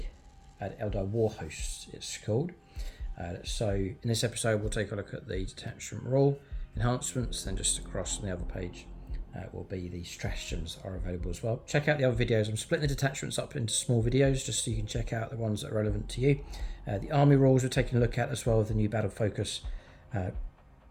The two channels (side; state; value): both; identical; correlation 1.00